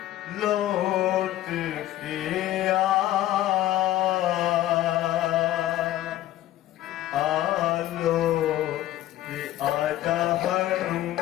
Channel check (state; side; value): quieter; right; 14.2 dB